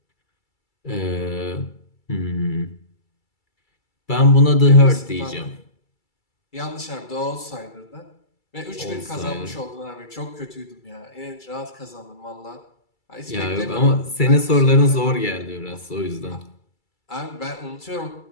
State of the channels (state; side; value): late; right; 2.3 ms